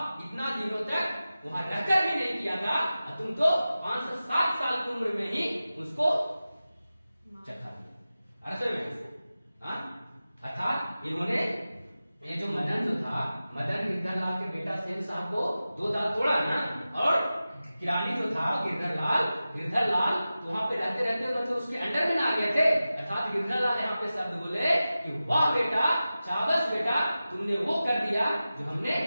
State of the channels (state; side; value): inverted; both; correlation -0.95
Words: इतना दिनों तक वहां रहकर भी नहीं किया था, और तुम तो 507 साल की उम्र में ही उसको चखा दिया। अरसे में अर्थात इन्होंने ये जो मदन जो था, मदन गिरधर लाल के बेटा सेन साहब को 2 दांत तोड़ा ना, और किरानी जो था गिरधर लाल तो वहां पे रहते रहते मतलब उसके अंडर में ना आ गए थे। अर्थात गिरधर लाल यहाँ पे शब्द बोले कि वाह बेटा, शाबाश बेटा, तुमने वो कर दिया जो हमने